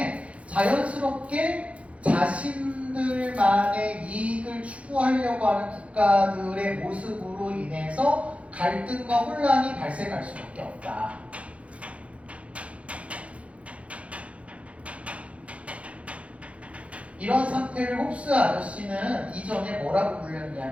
자연스럽게 자신들만의 이익을 추구하려고 하는 국가들의 모습으로 인해서 갈등과 혼란이 발생할 수밖에 없다. 이런 상태를 홉스 아저씨는 이전에 뭐라고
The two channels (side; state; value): left; late; 0.063 ms